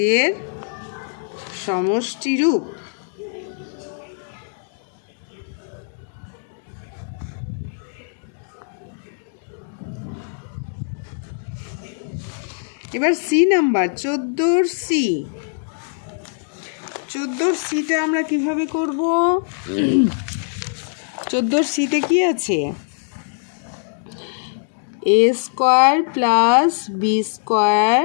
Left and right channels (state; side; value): silent; right; digital silence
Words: সমষ্টি রূপ। এবার সি নাম্বার 14 সি, 14 সিটা আমরা কিভাবে করব? 14 সিতে কি আছে? A square plus B square